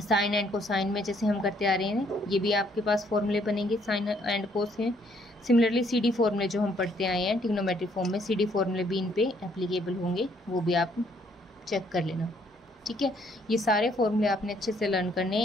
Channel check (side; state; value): both; normal; correlation 0.67